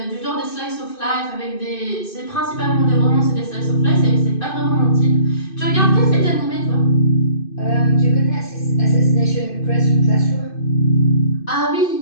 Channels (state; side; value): late; right; 2.6 ms